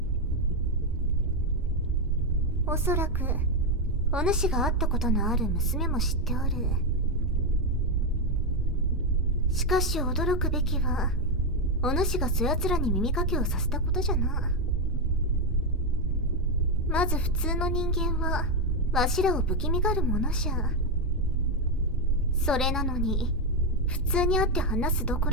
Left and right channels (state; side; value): normal; both; correlation 0.06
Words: おそらく、お主が会ったことのある娘も知っておる。しかし驚くべきは、お主がそやつらに耳かけをさせたことじゃな。まず普通の人間は、わしらを不気味がるものじゃ。それなのに、普通に会って話すどこ